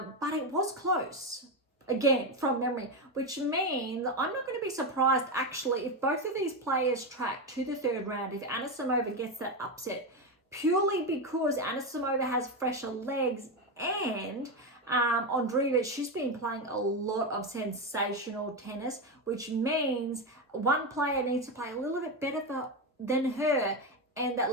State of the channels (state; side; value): normal; both; correlation 0.12